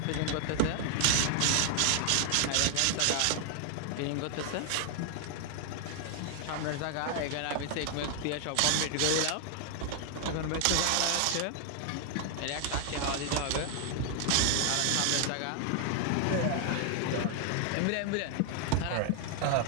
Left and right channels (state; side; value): different; both; correlation 0.00